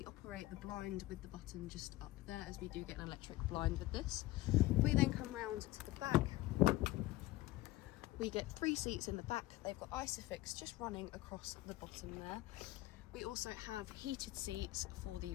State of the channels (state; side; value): quieter; right; 17.7 dB